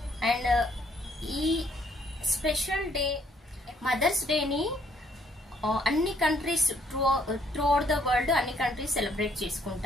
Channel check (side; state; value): both; normal; correlation 0.67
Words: And ఈ special day mothers డేని అన్ని countries throughout the world అన్ని countries celebrate